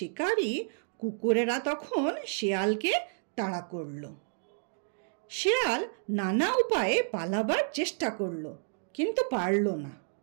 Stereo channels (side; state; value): left; silent; digital silence